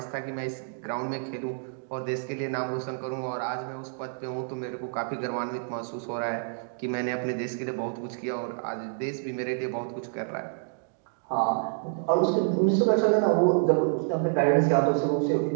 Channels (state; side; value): silent; left; digital silence